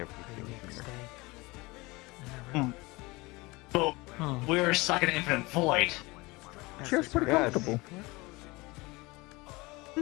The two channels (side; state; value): right; quieter; 23.5 dB